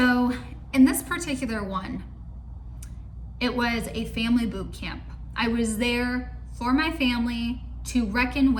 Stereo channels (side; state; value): both; identical; correlation 1.00